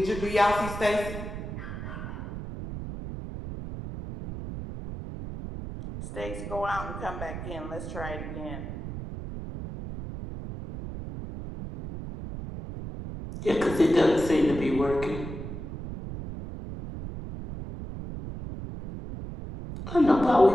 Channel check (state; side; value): noise; right; rumble, 8 dB below the sound